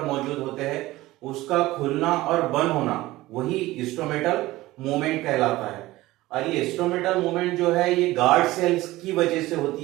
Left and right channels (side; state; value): left; quieter; 17.9 dB